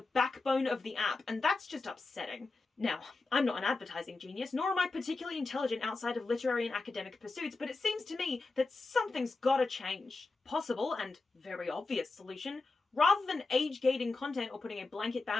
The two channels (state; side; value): quieter; right; 3.6 dB